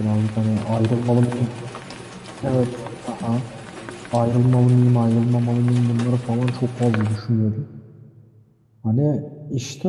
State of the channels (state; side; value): identical; both; correlation 1.00